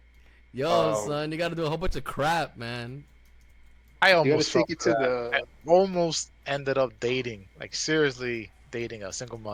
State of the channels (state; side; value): identical; both; correlation 1.00